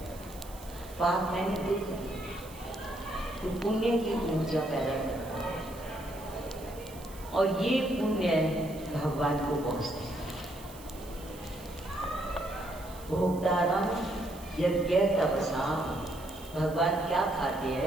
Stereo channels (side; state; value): right; noise; hiss, 19 dB below the sound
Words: पाप मैंने दुख दी, तो पुण्य की ऊर्जा पैदा करता है और ये पुण्य भगवान को पहुंचते हैं। भोक्तारम यज्ञ तपसा, भगवान क्या खाते